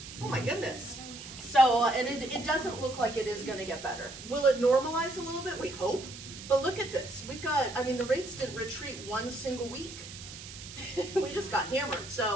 Oh my goodness. So, and it doesn't look like it is gonna get better. Will it normalize a little bit? We hope. But look at this. We've got, I mean, the rates didn't retreat one single week. We just got hammered.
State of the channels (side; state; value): right; noise; hiss, 13 dB below the sound